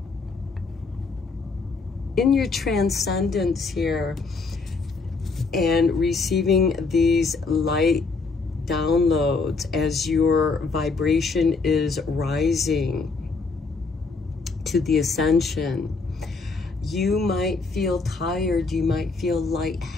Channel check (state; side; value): quieter; right; 4.2 dB